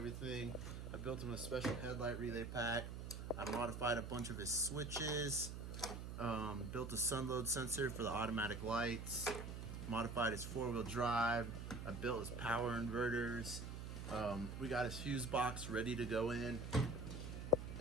I built him a special headlight relay pack. I modified a bunch of his switches, built a sun load sensor for the automatic lights, modified his four-wheel drive. I built his power inverters. We got his fuse box ready to go in.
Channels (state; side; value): noise; right; hum, 7 dB below the sound